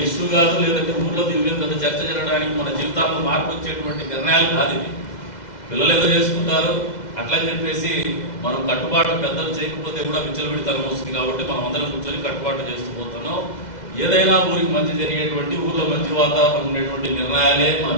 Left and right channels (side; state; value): right; late; 2.0 ms